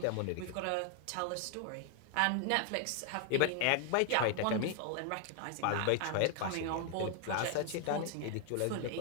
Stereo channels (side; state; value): both; different; correlation 0.00